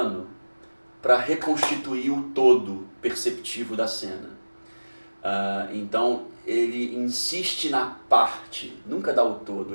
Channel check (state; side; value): inverted; both; correlation -1.00